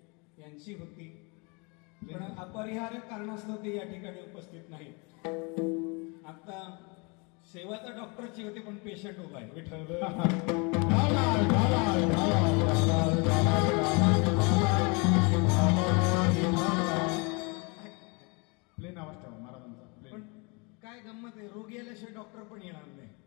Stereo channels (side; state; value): right; quieter; 31.0 dB